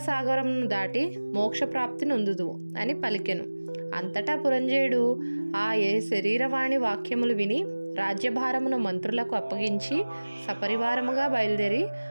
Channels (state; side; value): inverted; both; correlation -1.00